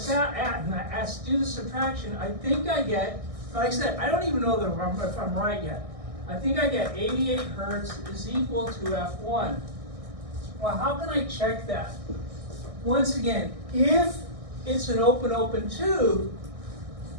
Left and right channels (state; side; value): late; left; 1.6 ms